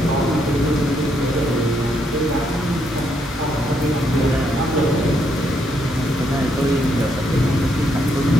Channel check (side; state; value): both; normal; correlation 0.75